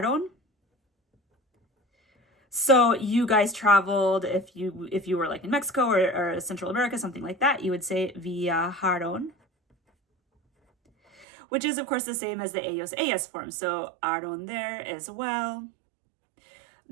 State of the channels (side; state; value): left; drops out; at 11.2 s